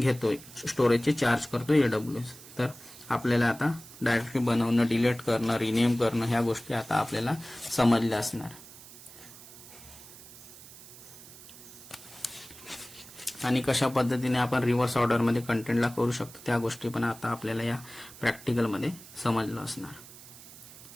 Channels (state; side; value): noise; right; hiss, 18 dB below the sound